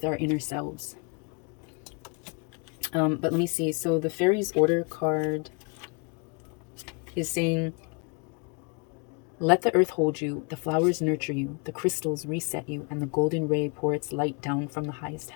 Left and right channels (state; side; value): quieter; right; 33.0 dB